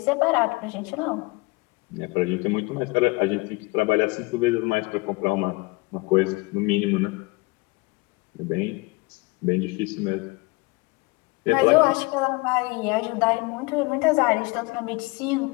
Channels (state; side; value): quieter; right; 25.8 dB